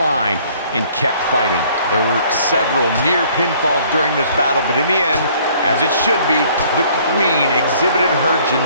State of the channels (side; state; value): both; inverted; correlation -0.58